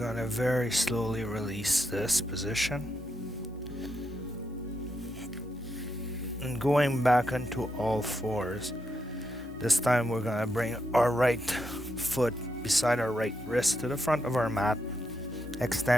to very slowly release this position. And going back into all fours. This time we're going to bring our right foot beside our right wrist to the front of our mat,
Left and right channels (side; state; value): both; normal; correlation 0.82